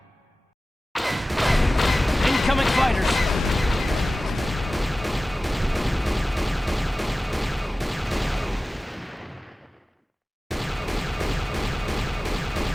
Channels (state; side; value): normal; both; correlation 0.97